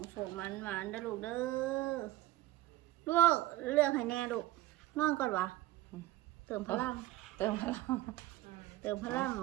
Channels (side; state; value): left; quieter; 16.2 dB